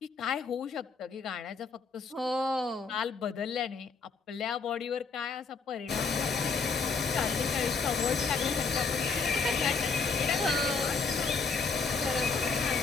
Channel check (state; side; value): quieter; right; 4.8 dB